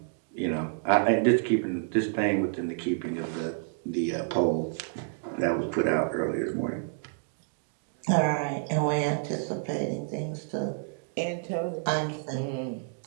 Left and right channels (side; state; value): left; silent; digital silence